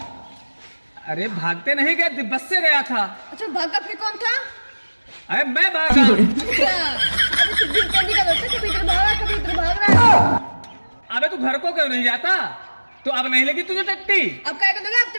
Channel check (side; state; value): both; inverted; correlation -1.00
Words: अरे भागते नहीं गए, बस से गया था। अच्छा, भागा फिर कौन था? अरे मैं भागा। अच्छा, अरे तू दिन कैदी का बच्चा, कभी इधर भाग रहा है, कभी इधर भाग रहा है। अबे तू घर को क्यों नहीं जाता? तो अब नहीं लगी तुझे टट्टी? अब क्या करोगे? अब तो